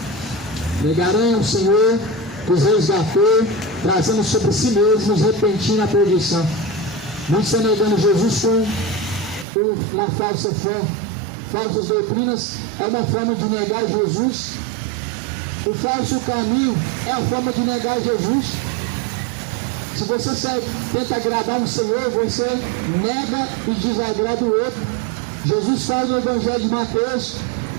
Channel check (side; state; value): left; drops out; at 9.5 s